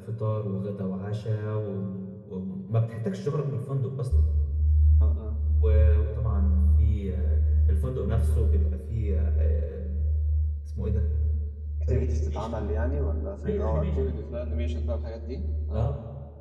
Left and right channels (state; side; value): identical; both; correlation 1.00